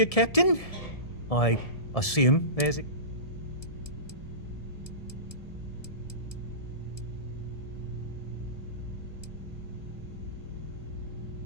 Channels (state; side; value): late; right; 1.7 ms